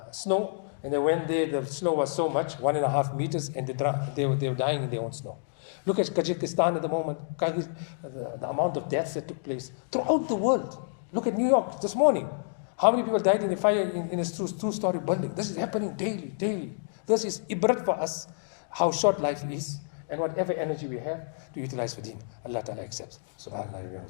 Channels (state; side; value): silent; right; digital silence